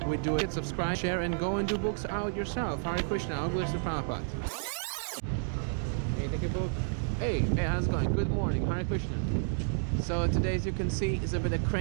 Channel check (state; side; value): silent; left; digital silence